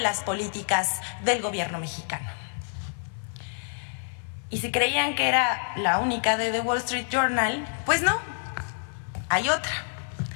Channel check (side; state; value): right; silent; 60 dB below the other